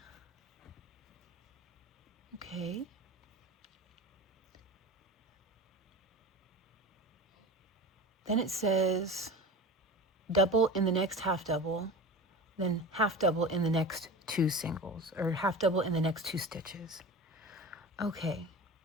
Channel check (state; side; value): normal; both; correlation 0.32